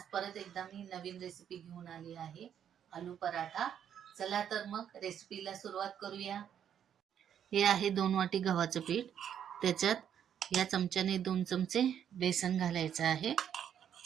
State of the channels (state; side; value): quieter; left; 9.1 dB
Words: परत एकदा मी नवीन रेसिपी घेऊन आली आहे, आलू पराठा. चला तर मग रेसिपीला सुरुवात करूया. हे आहे 2 वाटी गव्हाचं पीठ. त्याच्यात या चमच्याने 2 चमचे बेसन घालायचं आहे.